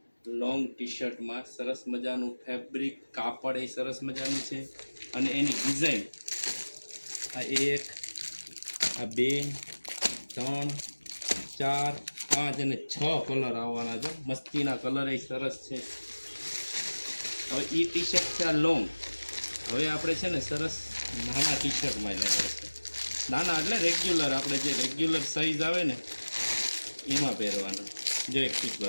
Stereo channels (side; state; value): both; inverted; correlation -1.00